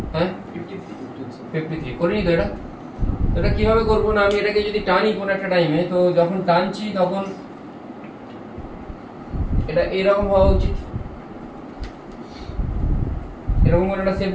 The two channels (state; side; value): identical; both; correlation 1.00